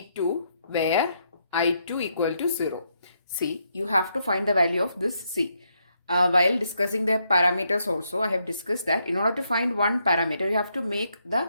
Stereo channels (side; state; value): both; inverted; correlation -0.77